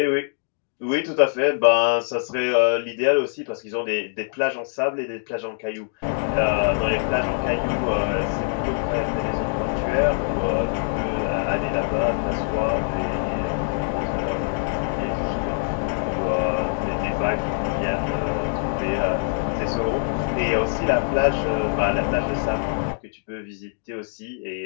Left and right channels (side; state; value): right; silent; digital silence